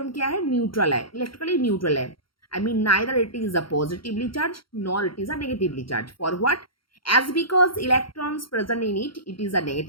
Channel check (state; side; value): late; right; 0.73 ms